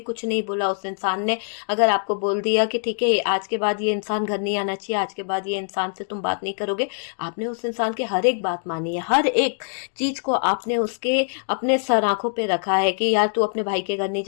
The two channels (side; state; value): right; silent; digital silence